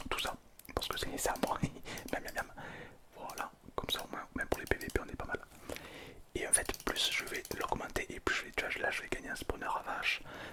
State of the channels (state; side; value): identical; both; correlation 1.00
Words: tout ça. Parce que c'est ça, moi. Miam, miam, miam. Voilà, comme ça au moins, même pour les PVP, on est pas mal. Et en fait, plus je vais l'augmenter et plus je vais, tu vois, là je vais gagner un spawner à vache.